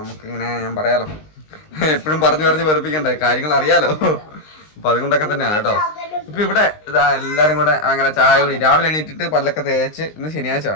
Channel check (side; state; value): right; late; 19 ms